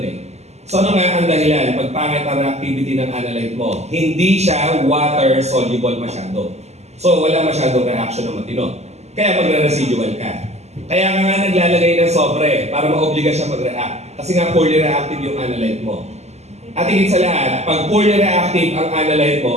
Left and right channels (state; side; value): late; left; 0.32 ms